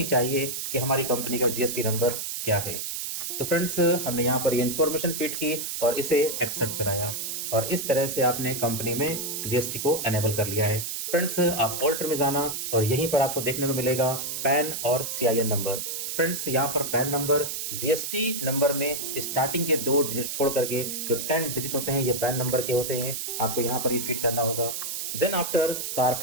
चाहिए कि हमारी कंपनी का जीएसटी नंबर क्या है। तो फ्रेंड्स, हमने यहाँ पर ये इंफॉर्मेशन फीड की और इसे एक्सेप्ट कराया और इस तरह से आपने कंपनी में जीएसटी को एनेबल कर लिया है। फ्रेंड्स, आप ऑल्टर में जाना और यहीं पर आपको देखने को मिलेगा पैन और सीआईएन नंबर। फ्रेंड्स, यहाँ पर पैन नंबर जीएसटी नंबर में स्टार्टिंग के 2 डिजिट छोड़ करके जो 10 डिजिट होते हैं ये पैन नंबर के होते हैं, आपको यहाँ पर ये फीड करना होगा। Then after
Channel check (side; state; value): right; noise; hiss, 4 dB below the sound